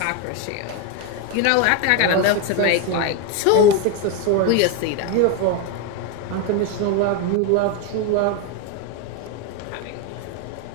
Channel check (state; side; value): different; both; correlation 0.02